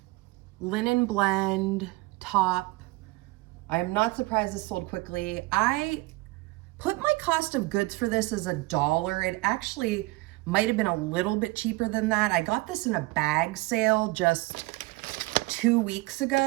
linen blend top. I am not surprised this sold quickly. I put my cost of goods for this as $1. It actually might have been a little bit cheaper than that. I got this in a bag sale just 2 weeks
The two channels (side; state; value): left; quieter; 22.1 dB